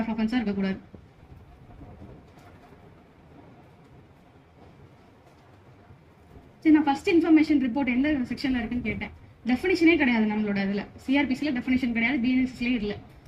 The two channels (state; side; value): identical; both; correlation 1.00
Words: ஆஃப் அஃபென்ஸா இருக்கக்கூடாது. நான் ஃபர்ஸ்ட் இன்ஃபர்மேஷன் ரிப்போர்ட் எந்த செக்ஷன்ல இருக்குன்னு கேட்டேன். டெஃபினிஷனே கிடையாது நம்மளோட இதுல. சிஆர்பிசில டெஃபினிஷன் கிடையாது, பிஎன்எஸ்எஸ்லயே இல்ல.